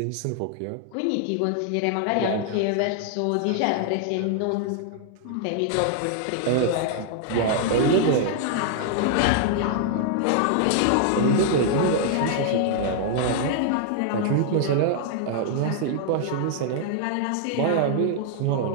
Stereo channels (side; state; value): both; different; correlation 0.00